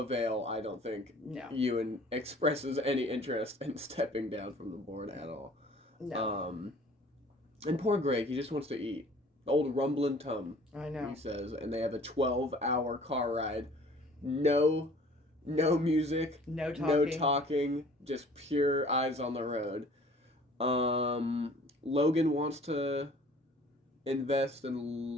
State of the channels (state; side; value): normal; both; correlation 0.51